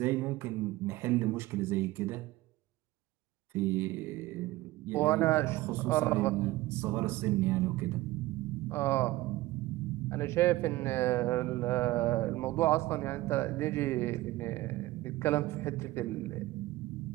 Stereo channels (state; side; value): quieter; left; 17.9 dB